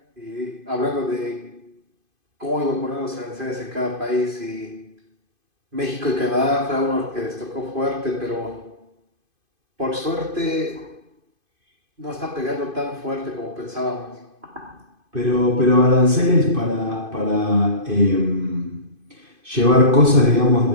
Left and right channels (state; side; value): late; left; 2.5 ms